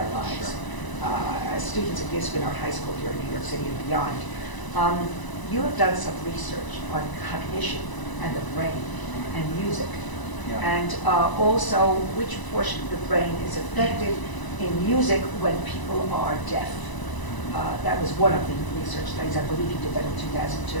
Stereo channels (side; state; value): right; late; 1.0 ms